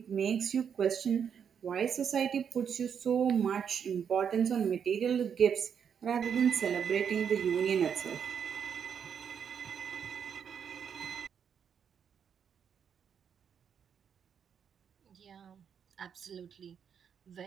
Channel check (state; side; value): quieter; left; 7.6 dB